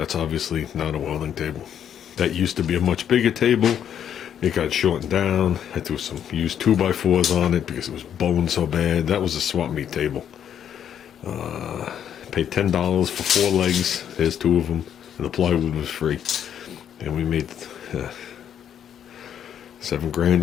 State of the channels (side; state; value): right; quieter; 9.3 dB